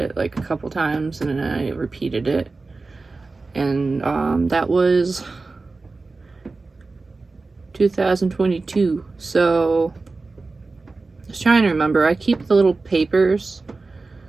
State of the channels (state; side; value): quieter; left; 3.7 dB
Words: like a couple times, and then I repeated it, and that was 2022. So I was trying to remember. I keep the little papers,